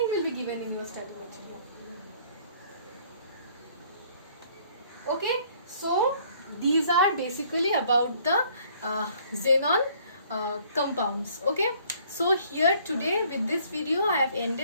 will be given in your study material. Okay, so these are basically about the xenon compounds. Okay, so here today with this video I have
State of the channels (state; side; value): inverted; both; correlation -0.60